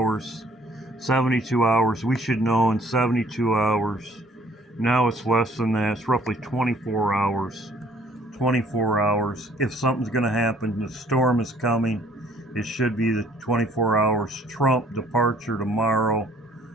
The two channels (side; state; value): both; normal; correlation 0.59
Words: 72 hours. We should know in 72 hours. Now it's less than that. It's roughly 24 hours. 24 hours. If something's going to happen, the storm is coming. It should be the 24 hours. Trump departure tomorrow.